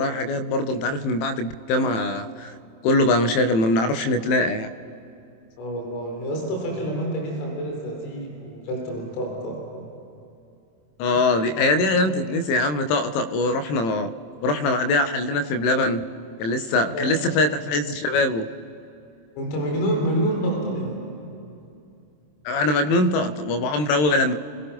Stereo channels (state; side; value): late; right; 27 ms